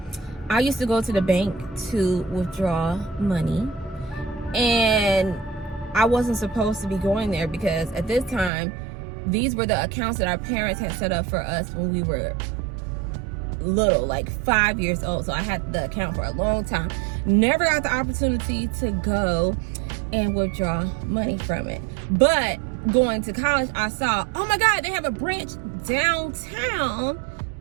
I used to go to the bank to withdraw money, and I wasn't supposed to be going there because at this time, these were the accounts that our parents had set up for us when we were little, like 5 years old. So I had the account for a long time. Never got the opportunity to go and withdraw money from it. But going to college, I saw, oh my God, they have a branch downtown.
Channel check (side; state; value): left; drops out; at 8.5 s